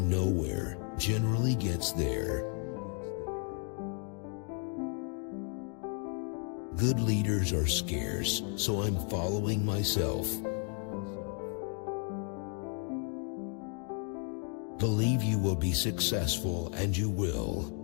nowhere generally gets there. Good leaders are scarce, so I'm following myself. Believe you will be successful, and you will.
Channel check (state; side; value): quieter; right; 39.0 dB